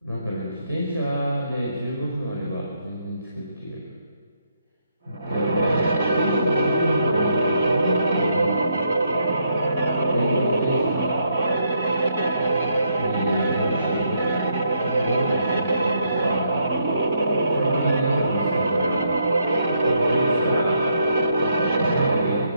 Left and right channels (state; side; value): inverted; both; correlation -0.76